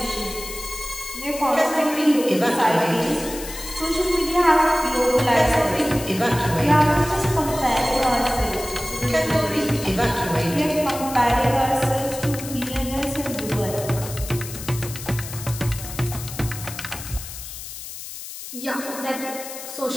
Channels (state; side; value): noise; left; hiss, 11 dB below the sound